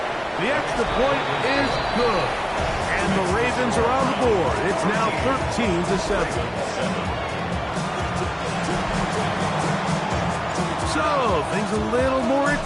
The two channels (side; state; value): both; identical; correlation 1.00